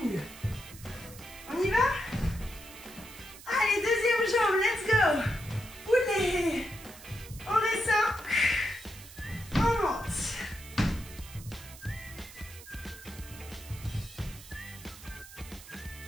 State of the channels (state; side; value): noise; right; hiss, 17 dB below the sound